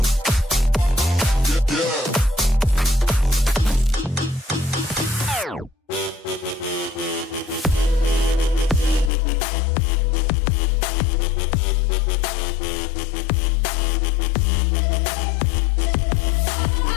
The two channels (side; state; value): right; drops out; at 9.1 s